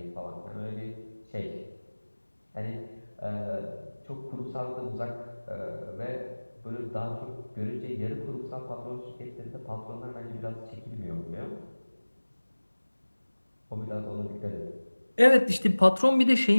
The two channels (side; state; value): both; inverted; correlation -1.00